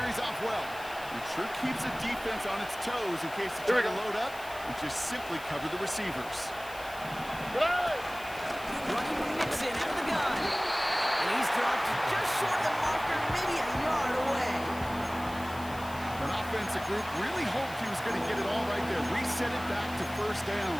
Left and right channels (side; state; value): left; noise; hiss, 18 dB below the sound